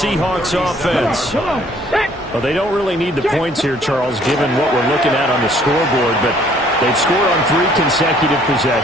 offense. Well, they don't really need the points here, Charles, given what we're looking at on the scoreboard, but they've scored on 3 consecutive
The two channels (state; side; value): normal; both; correlation 0.60